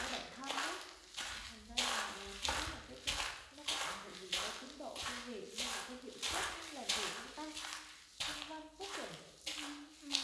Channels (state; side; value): identical; both; correlation 1.00